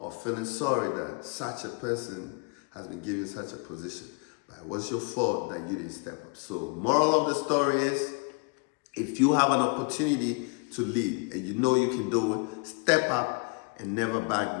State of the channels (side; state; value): right; quieter; 33.1 dB